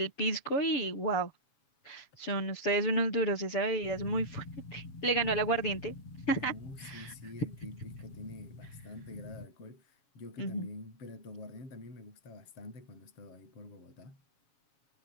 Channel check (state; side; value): late; right; 7.2 ms